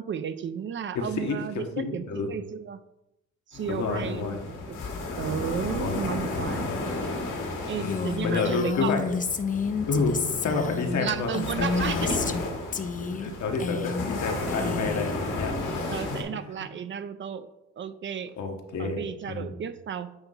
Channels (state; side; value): normal; both; correlation 0.31